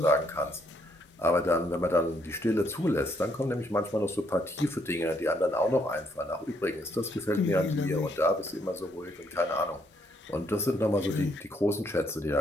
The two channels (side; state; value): both; normal; correlation 0.72